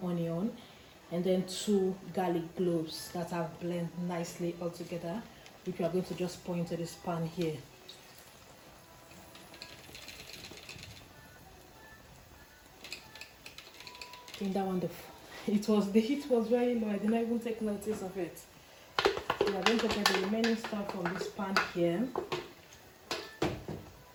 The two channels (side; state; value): both; identical; correlation 1.00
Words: onion and then 2 garlic cloves that I've blended nicely all together, which we are going to just pour into this pan here. I think that one, the heat was very low. I didn't even take notice of it. We are going to get the remaining stuff from this pan here.